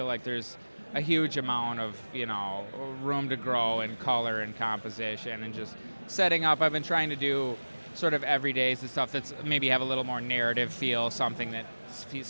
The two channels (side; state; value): both; inverted; correlation -1.00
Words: like there's a huge amount of, room to grow in color and composition, and just setting up. I've been trying to do sort of everydays, the stuff that's maybe have a little more narrative feel, something that